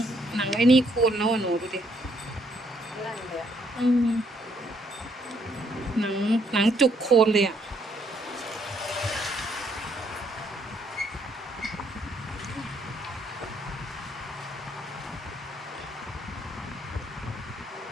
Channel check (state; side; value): normal; both; correlation 0.70